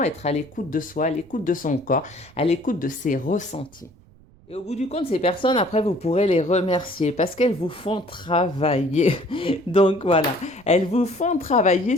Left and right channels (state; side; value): noise; right; rumble, 27 dB below the sound